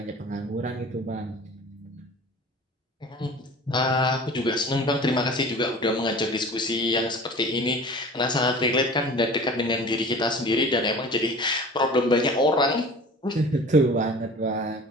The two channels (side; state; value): both; normal; correlation 0.41